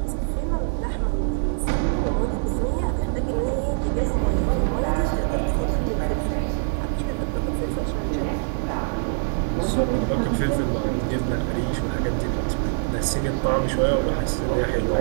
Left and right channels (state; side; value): silent; left; digital silence